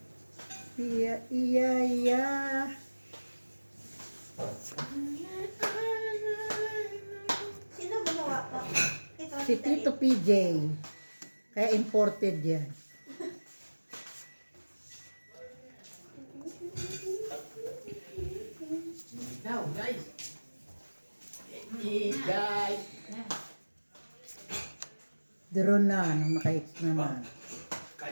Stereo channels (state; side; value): inverted; both; correlation -1.00